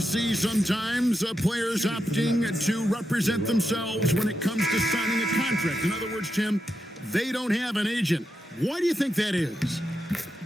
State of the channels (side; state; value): both; normal; correlation 0.86